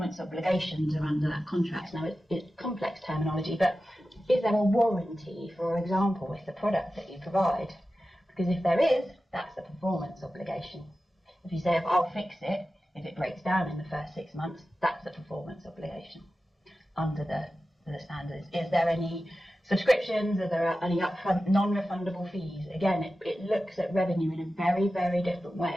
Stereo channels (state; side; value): normal; both; correlation 0.93